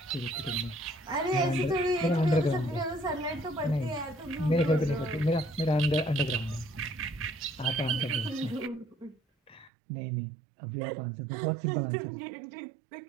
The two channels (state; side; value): drops out; left; at 9.7 s